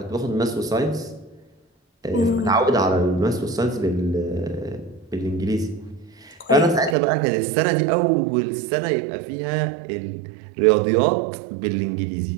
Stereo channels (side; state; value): left; drops out; at 7.0 s